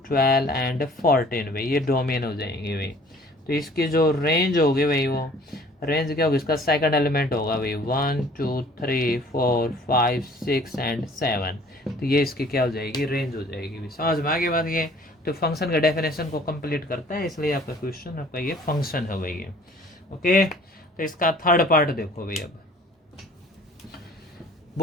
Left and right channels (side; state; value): both; normal; correlation 0.53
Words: 12 एंड 14 भाई, ये डोमेन हो जाएंगे भाई। तो इसकी जो रेंज होगी भाई, वो रेंज क्या होगी, इसका सेकंड एलिमेंट होगा भाई 1 2 3 4 5 6 एंड 7। तो ये इसकी क्या हो जाएगी, रेंज हो जाएगी भाई। समझ में आगे बात ये। तो फंक्शन का डेफिनेशन को कंप्लीट करता है, इसलिए आपका क्वेश्चन आपका ये फंक्शन है भाई ये। ओके, तो इसका थर्ड पार्ट देखो भाई। अब